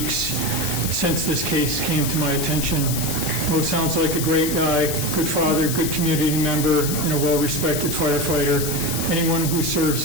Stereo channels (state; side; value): noise; left; hiss, 4 dB below the sound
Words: since this case came to my attention. Mo sounds like a great guy, good father, good community member, and a well-respected firefighter. Anyone who